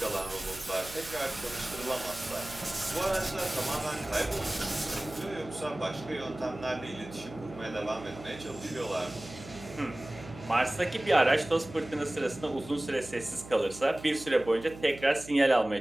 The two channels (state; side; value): noise; right; hum, 15 dB below the sound